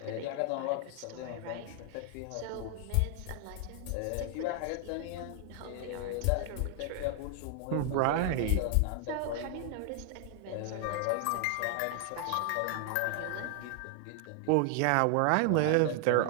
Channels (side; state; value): both; different; correlation 0.00